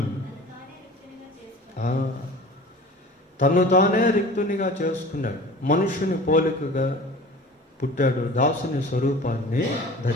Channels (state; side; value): normal; both; correlation 0.41